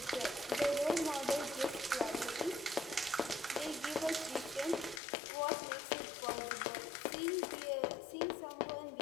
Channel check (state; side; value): drops out; right; at 5.0 s